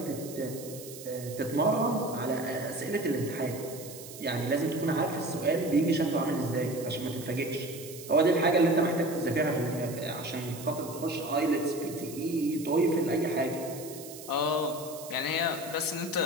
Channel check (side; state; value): right; noise; hiss, 14 dB below the sound